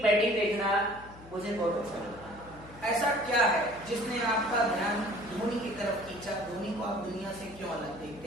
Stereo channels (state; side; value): noise; left; hum, 19 dB below the sound